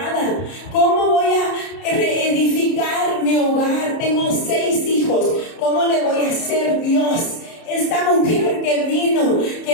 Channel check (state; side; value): late; right; 30 ms